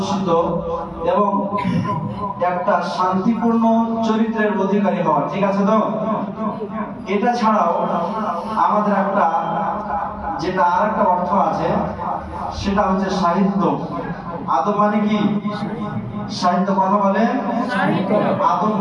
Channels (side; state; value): both; identical; correlation 1.00